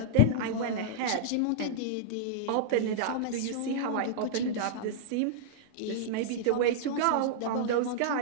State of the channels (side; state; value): both; different; correlation -0.02